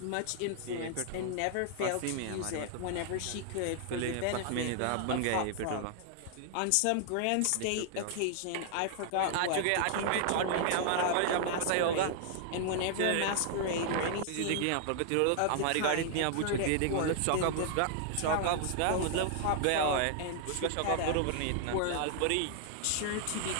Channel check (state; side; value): different; both; correlation 0.00